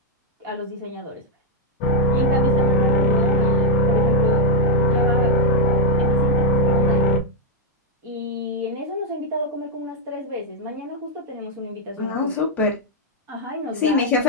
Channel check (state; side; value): normal; both; correlation -0.02